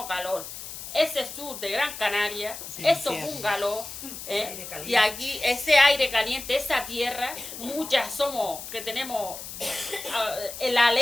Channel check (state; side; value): noise; left; hiss, 10 dB below the sound